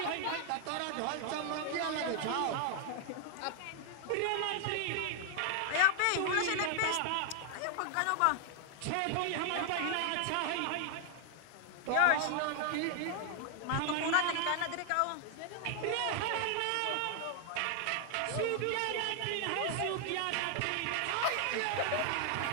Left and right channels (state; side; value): different; both; correlation 0.00